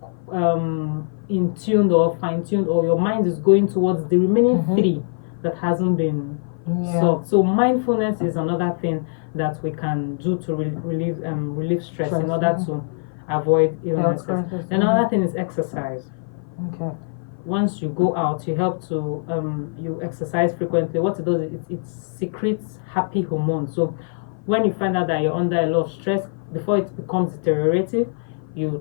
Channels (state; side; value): silent; right; 56 dB below the other